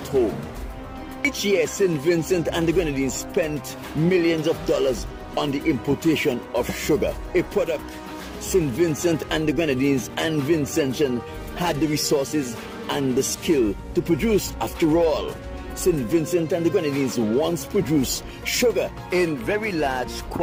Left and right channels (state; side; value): identical; both; correlation 1.00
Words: home. Each year, St. Vincent and the Grenadines spent millions of dollars on the importation of sugar, a product St. Vincent and the Grenadines and Vincentians had the resources and the skill to produce. After all, St. Vincent and the Grenadines once produced sugar in very large